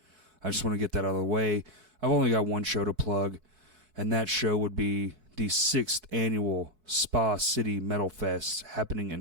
I just want to get that out of the way. I've only got one show to plug, and that show would be the 6th annual Spa City Metal Fest happening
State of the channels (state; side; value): late; left; 4.6 ms